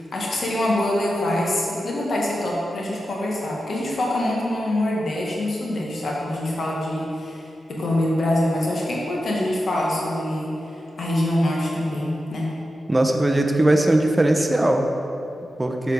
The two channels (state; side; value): normal; both; correlation 0.91